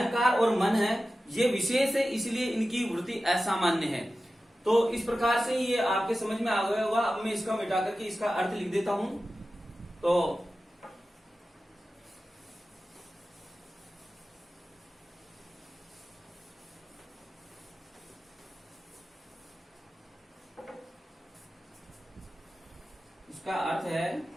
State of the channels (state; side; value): normal; both; correlation 0.94